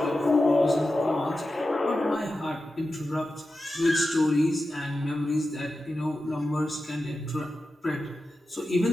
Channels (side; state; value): both; normal; correlation 0.92